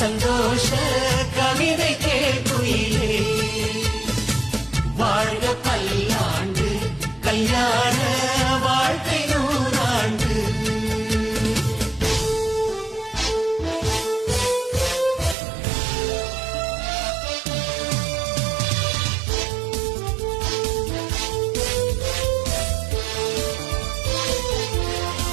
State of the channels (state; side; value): drops out; left; at 15.4 s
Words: கவிதை கேள்குயிலே வாழ்க பல்லாண்டு கல்யாண வாழ்க்கை நூறாண்டு